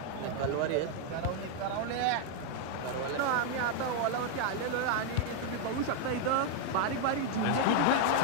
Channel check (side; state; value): both; different; correlation 0.00